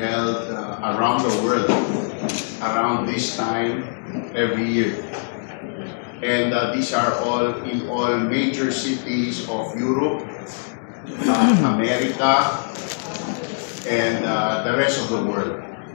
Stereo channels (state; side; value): silent; right; digital silence